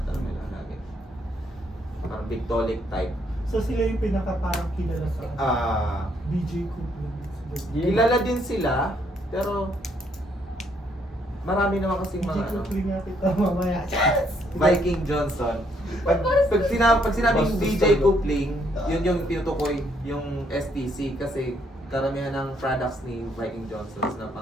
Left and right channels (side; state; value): both; normal; correlation 0.70